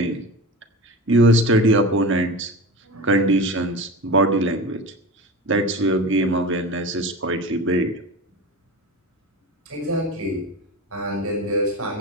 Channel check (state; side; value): normal; both; correlation 0.29